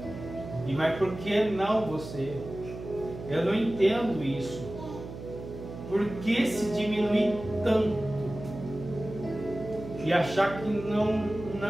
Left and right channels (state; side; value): noise; right; hum, 11 dB below the sound